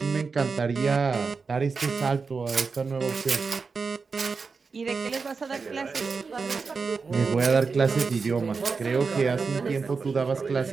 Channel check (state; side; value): quieter; left; 4.8 dB